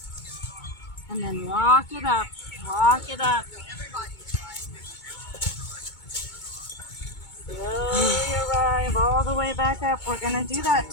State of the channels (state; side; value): late; right; 2.2 ms